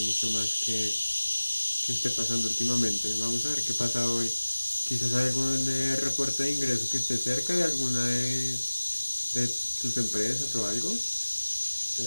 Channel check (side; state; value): both; inverted; correlation -1.00